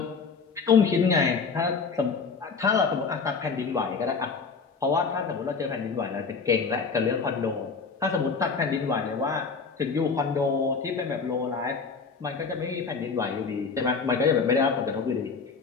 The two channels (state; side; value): quieter; right; 5.1 dB